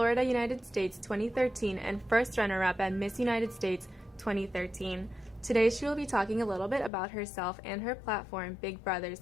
United States 2013 and first runner-up at Miss United States 2013. Today she will be talking a little bit about herself and her platform, Big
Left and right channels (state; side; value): drops out; right; at 6.9 s